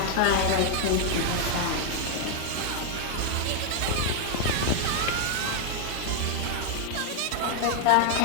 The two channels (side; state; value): both; different; correlation 0.00